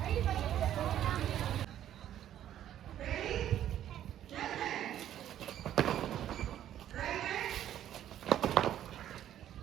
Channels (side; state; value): left; quieter; 11.3 dB